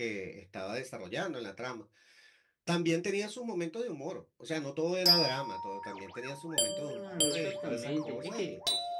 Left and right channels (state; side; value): identical; both; correlation 1.00